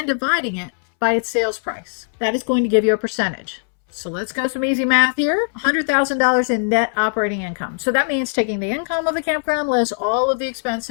dividing it by its sales price. That is going to give you a percentage. So let's go some easy math here. $100,000 in net operating income. So that means taking the income of the campground less all of the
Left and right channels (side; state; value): right; silent; 66 dB below the other